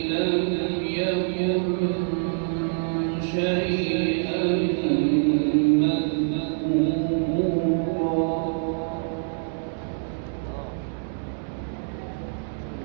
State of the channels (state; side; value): silent; left; digital silence